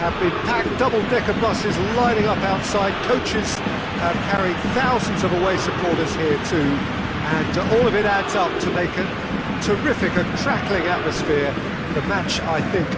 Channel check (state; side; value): identical; both; correlation 1.00